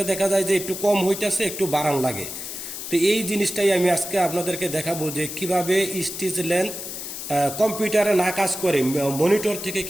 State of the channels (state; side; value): noise; left; hiss, 8 dB below the sound